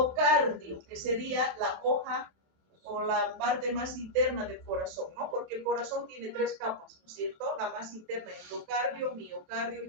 que sería la hoja o la parte más interna del corazón, ¿no? Porque el corazón tiene 3 capas, ¿no es cierto? La más interna, endocardio, miocardio y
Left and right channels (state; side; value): late; left; 27 ms